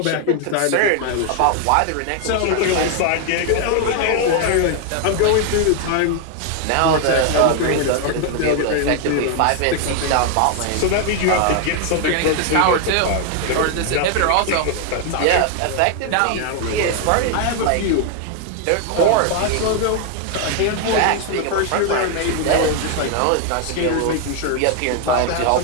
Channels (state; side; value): different; both; correlation 0.00